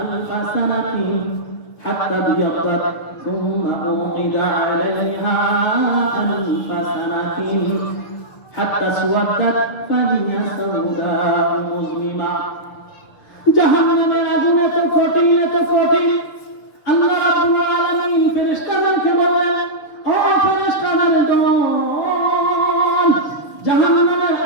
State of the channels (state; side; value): late; right; 6.7 ms